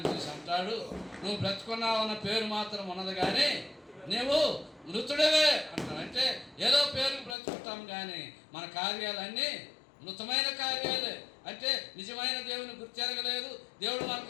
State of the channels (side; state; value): right; drops out; at 7.4 s